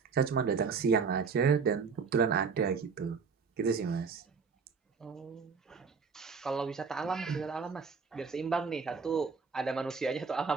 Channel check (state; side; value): quieter; left; 5.5 dB